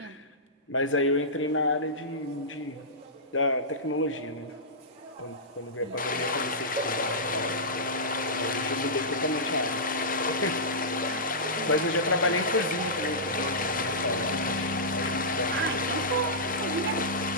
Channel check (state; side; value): normal; both; correlation -0.16